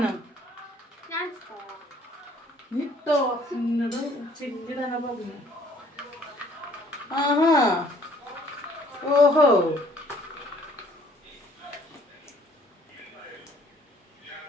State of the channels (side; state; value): both; normal; correlation 0.59